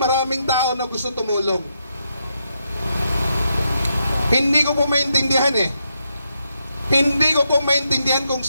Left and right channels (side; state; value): both; inverted; correlation -0.81